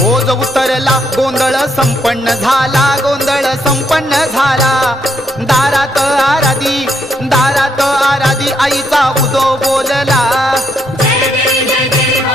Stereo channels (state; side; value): normal; both; correlation 0.75